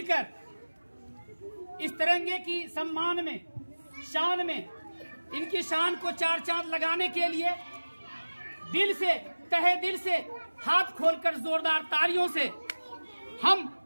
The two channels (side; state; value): both; inverted; correlation -1.00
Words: इस तिरंगे की सम्मान में, शान में, इनकी शान को चार चांद लगाने के लिए दिल से, तहे दिल से, हाथ खोलकर जोरदार तालियों से हम